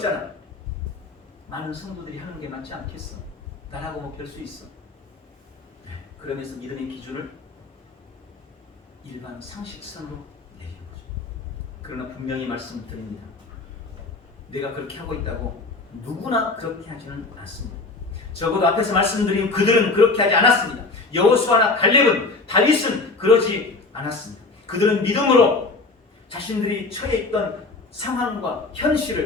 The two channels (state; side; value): quieter; right; 3.7 dB